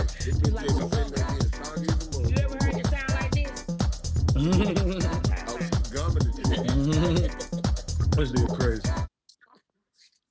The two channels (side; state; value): both; identical; correlation 1.00